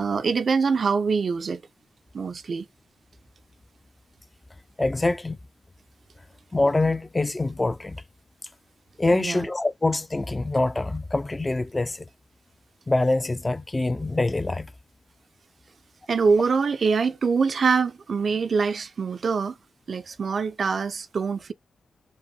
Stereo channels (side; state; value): both; normal; correlation 0.91